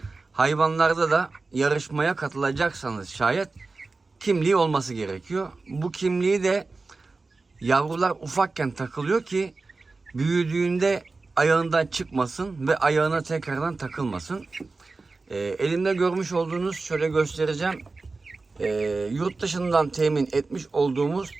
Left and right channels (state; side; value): quieter; left; 3.8 dB